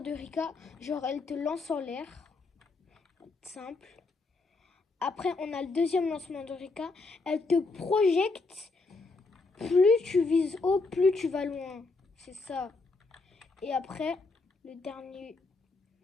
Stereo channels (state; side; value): quieter; right; 3.7 dB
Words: Rika, genre elle te lance en l'air. Simple. Après, on a le deuxième lancement de Rika. Elle te projette. Plus tu vises haut, plus tu vas loin. C'est ça. Et après, le dernier,